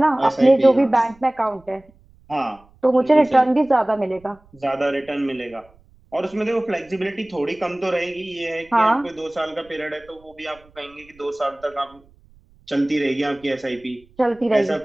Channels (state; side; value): noise; right; rumble, 29 dB below the sound